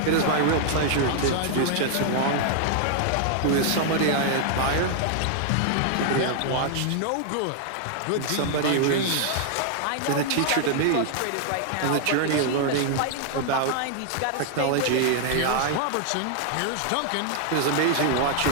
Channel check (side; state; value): both; different; correlation 0.00